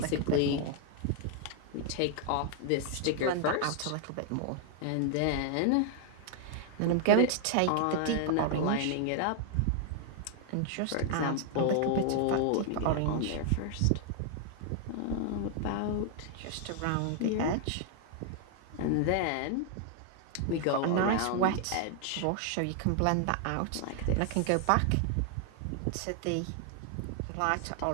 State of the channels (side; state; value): both; different; correlation 0.00